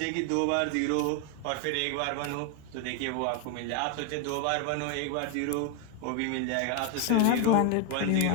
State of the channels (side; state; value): both; different; correlation 0.01